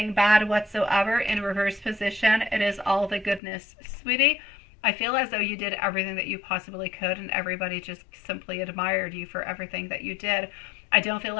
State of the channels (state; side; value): drops out; right; at 3.4 s